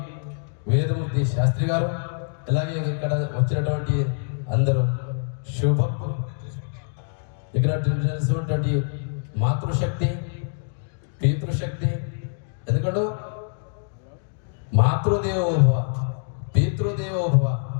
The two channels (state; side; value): silent; right; digital silence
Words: వేదమూర్తి శాస్త్రి గారు, అలాగే ఇక్కడ వచ్చినటువంటి అందరూ శుభక్తులు, ఇక్కడ తెలిసినటువంటి మాతృశక్తి, పితృశక్తి. ఎందుకంటే మాతృదేవోభవ, పితృదేవోభవ,